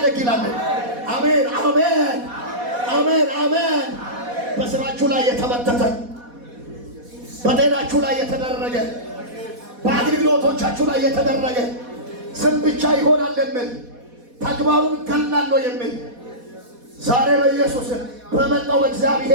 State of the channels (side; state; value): left; late; 4.1 ms